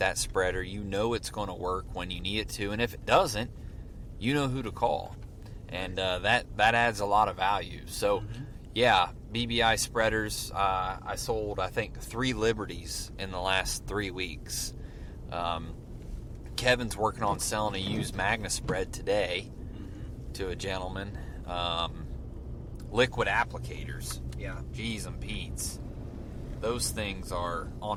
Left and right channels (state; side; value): identical; both; correlation 1.00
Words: spreader. You know it's going to work when you need it to, and if it doesn't, you know who to call, and that adds a lot of value. So, yeah, BBI spreaders. I sold, I think, 3 Liberties in the last 3 weeks. Kevin's working on selling a used Magna spread today to a gentleman. Liquid applicators. Yeah. G's and Pete's. Those things are